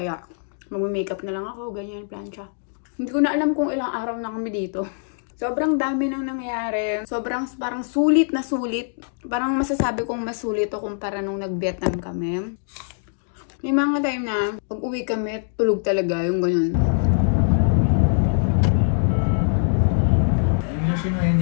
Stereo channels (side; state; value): right; silent; digital silence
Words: mag-makeup na lang ako, ganyan, plancha. Hindi ko na alam kung ilang araw na kami dito. Sobrang dami nang nangyari. Sobrang parang sulit na sulit. Parang masasabi kong mas sulit o kumpara nung nag-Vietnam kami. May mga time na pag uwi kami, tulog talaga yung ganyan. Yung lotion ngayon